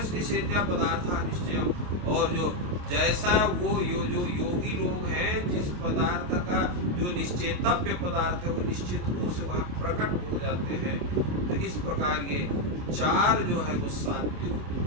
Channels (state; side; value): late; left; 28 ms